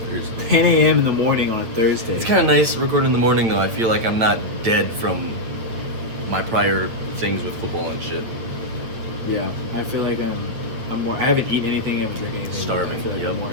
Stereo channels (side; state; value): left; late; 9.0 ms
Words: Thursday. 10 a.m. in the morning on a Thursday. It's kind of nice recording in the morning though. I feel like I'm not dead from my prior things with football and shit. Yeah, I feel like I'm more. I haven't eaten anything. I haven't drank anything. Starving, I feel like yep.